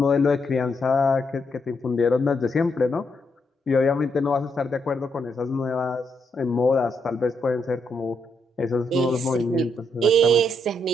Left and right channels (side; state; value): both; normal; correlation 0.78